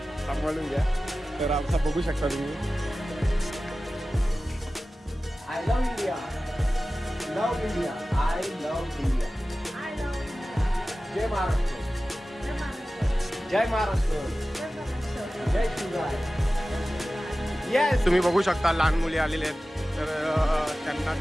सांभाळून घ्या. तर आमचा बघू शकता तुम्ही. I love India. Love India. I love India. जय महाराष्ट्र. जय महाराष्ट्र. जय शिवराय. येस. तुम्ही बघू शकता लहान मुली आलेले आहेत, तर त्यांना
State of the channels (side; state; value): both; normal; correlation 0.96